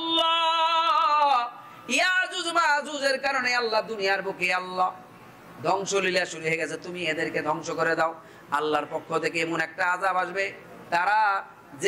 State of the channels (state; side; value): identical; both; correlation 1.00